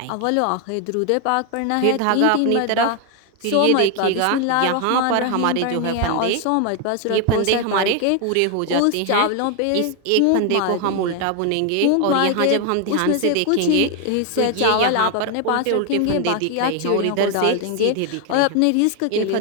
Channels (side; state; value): both; different; correlation 0.01